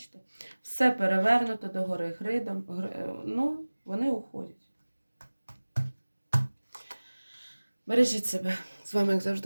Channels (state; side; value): inverted; both; correlation -1.00